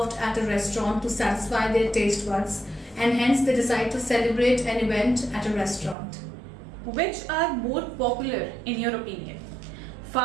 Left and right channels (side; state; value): left; drops out; at 6.0 s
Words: at a restaurant to satisfy their taste buds, and hence they decide to celebrate an event at a restaurant. Which are more popular in your opinion?